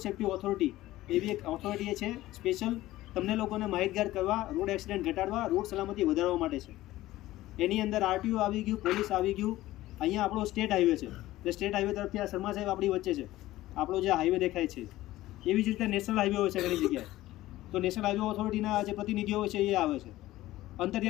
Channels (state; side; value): quieter; right; 16.2 dB